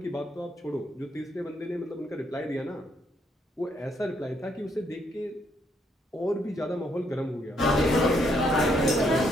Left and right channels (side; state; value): both; normal; correlation 0.73